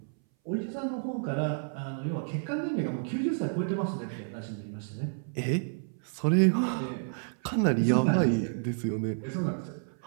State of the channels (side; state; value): left; silent; 58 dB below the other